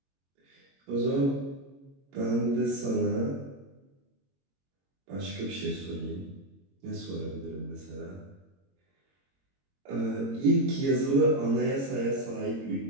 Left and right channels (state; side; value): late; left; 22 ms